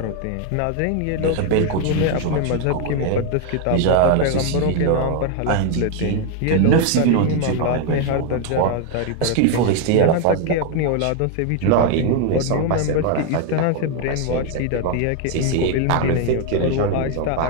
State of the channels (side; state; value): both; different; correlation 0.01